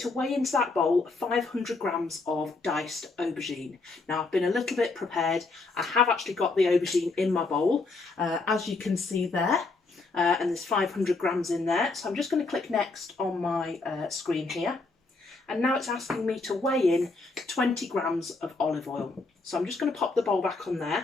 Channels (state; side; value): quieter; right; 3.7 dB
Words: weigh into that bowl 500 grams of diced aubergine. Now I've been a little bit prepared. I have actually got the aubergine in my bowl, as you can see there, and there's 500 grams in there. So I'm just going to click next on my screen here. And now it's asking me to weigh in 20 grams of olive oil. So I'm just going to pop the bowl back on